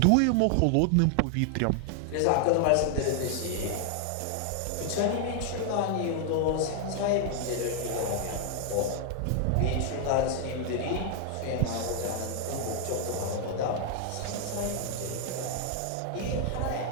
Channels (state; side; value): different; both; correlation 0.00